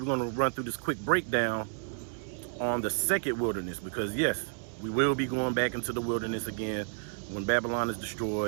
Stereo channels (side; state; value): left; silent; digital silence